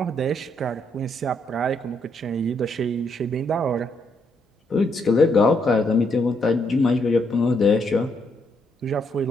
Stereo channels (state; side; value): normal; both; correlation 0.75